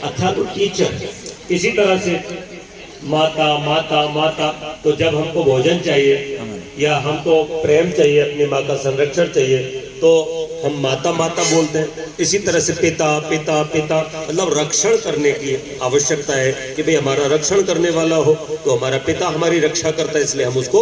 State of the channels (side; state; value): both; identical; correlation 1.00